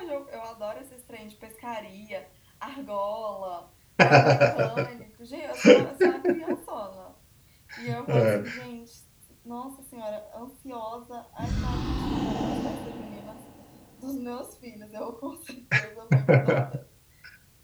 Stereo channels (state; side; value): identical; both; correlation 1.00